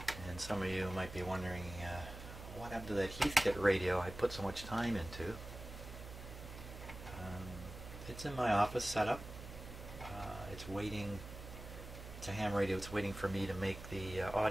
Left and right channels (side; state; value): right; noise; hum, 12 dB below the sound